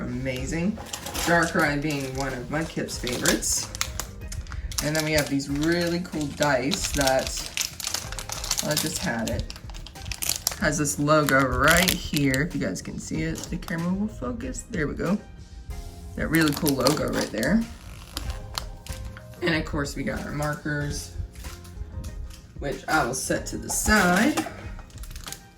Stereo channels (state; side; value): identical; both; correlation 1.00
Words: amazing. Darkrai being one of Mudkip's favorites. And then we have these really cool dice that, well, I just had it. Has this logo right here. If you guys can see it, the camera will focus. There we go. That really cool logo right there. And of course we got our markers, which I will set to the side.